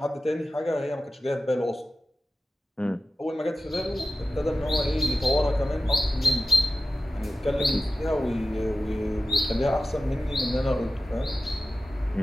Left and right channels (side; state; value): both; normal; correlation 0.95